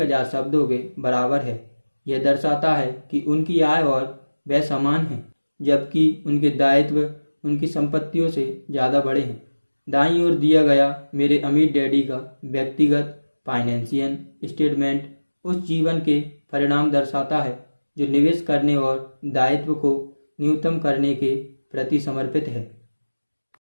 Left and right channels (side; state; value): both; inverted; correlation -1.00